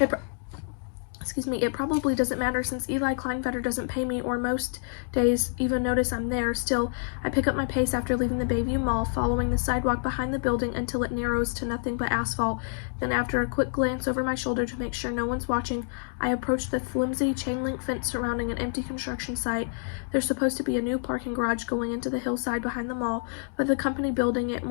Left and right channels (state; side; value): silent; right; 60 dB below the other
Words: probably doesn't matter since Eli Kleinfetter doesn't pay me or most days even notice I'm there. Still, I pick up my pace after leaving the Bayview Mall, following the sidewalk behind the building until it narrows to nothing but asphalt. Then after a quick glance over my shoulder to make sure no one's watching, I approach the flimsy chain-link fence surrounding an empty construction site. There's supposed to be a new parking garage going into the hillside behind the mall, but the company building it